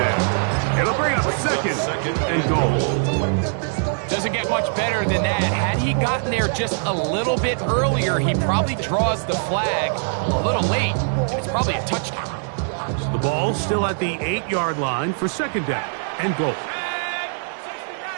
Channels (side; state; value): left; silent; digital silence